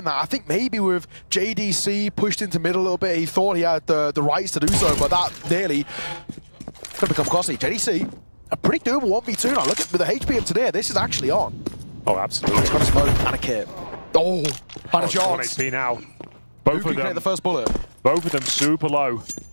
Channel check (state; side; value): inverted; both; correlation -1.00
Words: that. I think maybe with JDC pushed into mid a little bit, he thought he had the rights to do so, but that nearly going to become costly. JDC, a pretty doable 1v2 now. Look at with the HP of Tanir, this is actually on. Oh, absolutely. He's got a smoke and a kit. Oh, and a chance. 1 HP now. Both of them, the first bullet. Both of them super low.